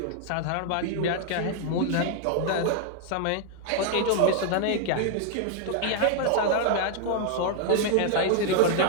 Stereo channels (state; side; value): different; both; correlation 0.00